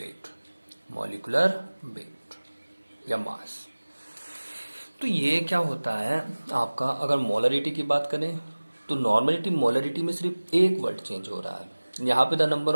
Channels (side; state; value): both; inverted; correlation -1.00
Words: मॉलिकुलर वेट या मास। तो ये क्या होता है आपका, अगर मोलरिटी की बात करें तो नॉर्मलिटी मोलरिटी में सिर्फ एक वर्ड चेंज हो रहा है, यहाँ पे the number